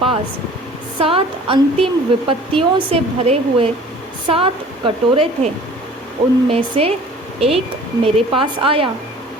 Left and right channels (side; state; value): both; normal; correlation 0.48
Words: पास 7 अंतिम विपत्तियों से भरे हुए 7 कटोरे थे, उनमें से एक मेरे पास आया